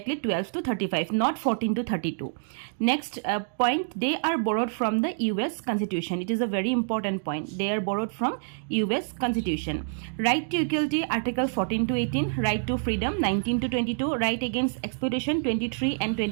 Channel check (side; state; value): left; silent; digital silence